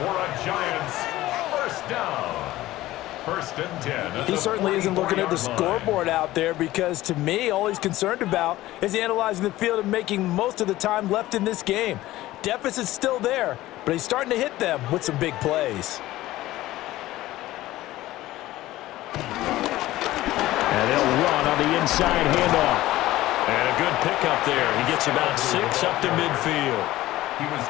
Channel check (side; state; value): right; quieter; 16.3 dB